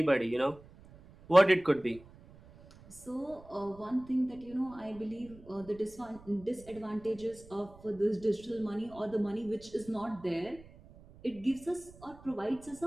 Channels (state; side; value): noise; right; rumble, 22 dB below the sound